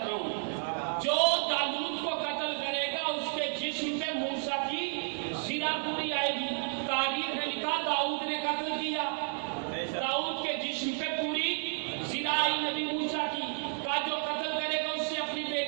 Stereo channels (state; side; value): silent; left; 57 dB below the other